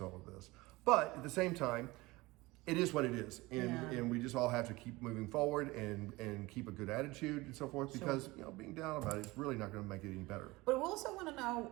all of this. But at the same time, it is what it is, and we just all have to keep moving forward and keep a good attitude and so forth, because being down about it is really not going to make it any better. But we also want to know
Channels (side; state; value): left; quieter; 21.3 dB